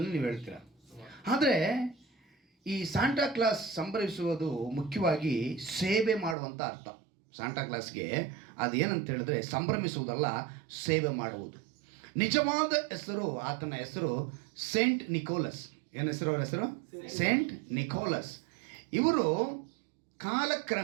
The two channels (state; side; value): drops out; left; at 6.4 s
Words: ನೀವು ಹೇಳ್ತೀರಾ. ಆದರೆ ಈ ಸಾಂಟಾ ಕ್ಲಾಸ್ ಸಂಭ್ರಮಿಸುವುದು ಮುಖ್ಯವಾಗಿ ಸೇವೆ ಮಾಡುವಂಥ ಅರ್ಥ. ಸಾಂಟಾ ಕ್ಲಾಸ್ಗೆ ಅದೇನಂತ ಹೇಳಿದ್ರೆ ಸಂಭ್ರಮಿಸುವುದಲ್ಲ, ಸೇವೆ ಮಾಡುವುದು. ನಿಜವಾದ ಹೆಸರು, ಆತನ ಹೆಸರು ಸೇಂಟ್ ನಿಕೋಲಸ್. ಏನು ಹೆಸರು? ಅವರ ಹೆಸರು ಸೇಂಟ್ ನಿಕೋಲಸ್. ಇವರು